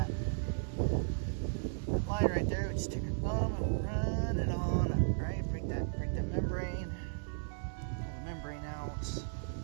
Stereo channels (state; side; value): silent; left; digital silence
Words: line right there. We just take our thumb and run it on up, right? Break that membrane. Pull the membrane out.